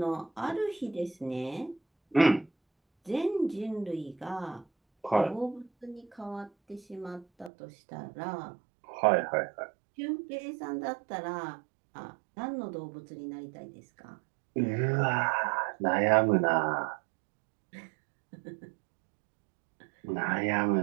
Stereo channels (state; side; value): drops out; left; at 7.5 s